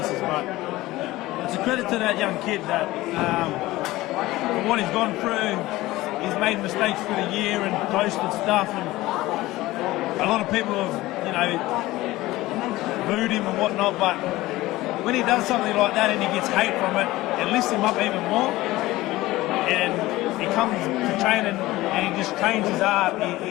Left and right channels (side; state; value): right; quieter; 18.0 dB